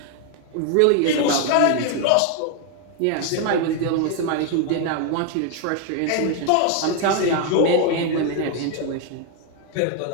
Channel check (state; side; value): different; both; correlation 0.00